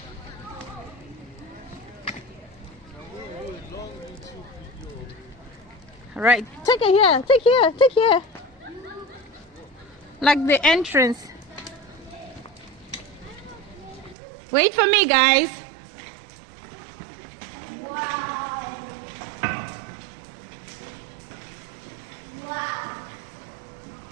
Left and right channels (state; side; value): drops out; left; at 14.2 s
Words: All right, take it here. Take here. Take here. Like the entrance. Wait for me, guys. Wow. Wow.